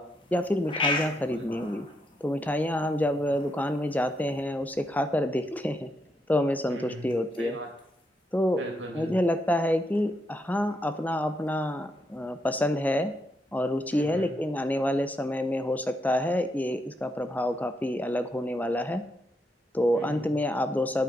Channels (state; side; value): normal; both; correlation 0.79